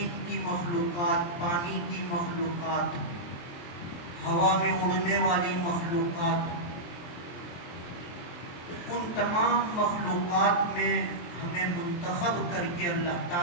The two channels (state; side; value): late; right; 23 ms